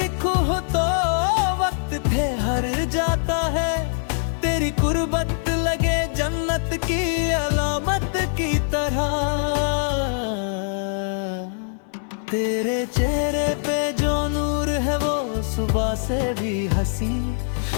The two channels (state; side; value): silent; right; 58 dB below the other